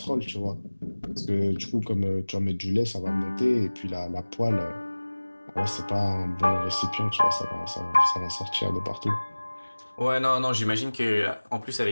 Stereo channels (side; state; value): both; inverted; correlation -1.00